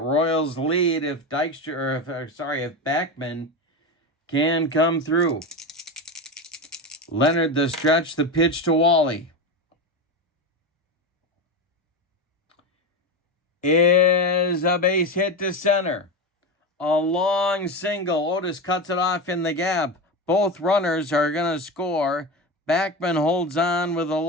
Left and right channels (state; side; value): normal; both; correlation 0.20